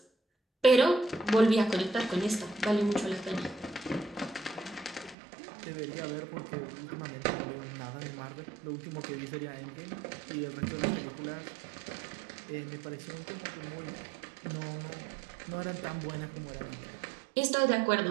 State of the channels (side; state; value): left; drops out; at 5.2 s